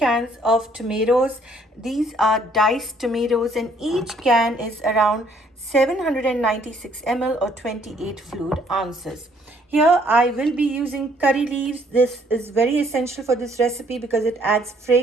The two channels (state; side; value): normal; both; correlation 0.64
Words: of tomatoes. These are diced tomatoes, and each can is around 796 ml or 28 fluid ounces. Here I will be using curry leaves. This is very essential for this recipe because it adds